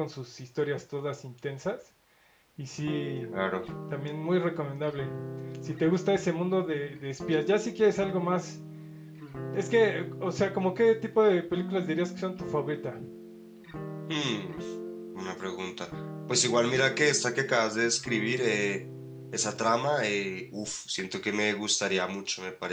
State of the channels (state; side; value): identical; both; correlation 1.00